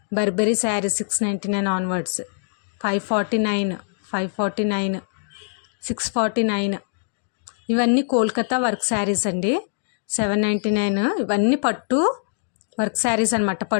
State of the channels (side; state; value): right; silent; digital silence